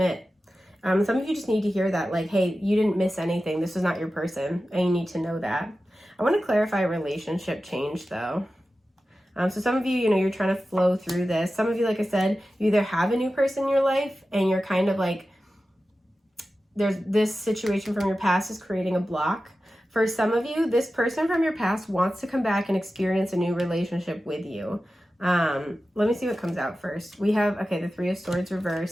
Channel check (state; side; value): normal; both; correlation 0.94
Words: Some of you just need to hear that, like, hey, you didn't miss anything. This was not your person, and you need to know that. I want to clarify relationship change, though. So some of you, you know, you're trying to flow through this. Some of you, like I said, you either have a new person in your life and you're kind of like, there's this situation from your past is creating a block. For some of you, this person from your past wants to come back and experience a new relationship with you. Let me see what comes out first. We have, okay, the Three of Swords